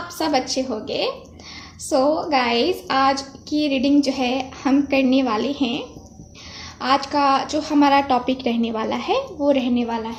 सब अच्छे होंगे। सो गाइस, आज की रीडिंग जो है हम करने वाले हैं। आज का जो हमारा टॉपिक रहने वाला है वो रहने वाला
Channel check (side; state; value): both; identical; correlation 1.00